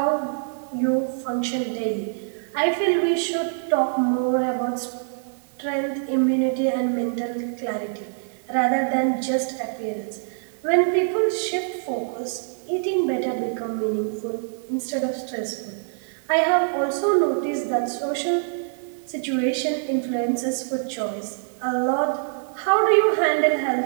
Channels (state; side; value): silent; left; digital silence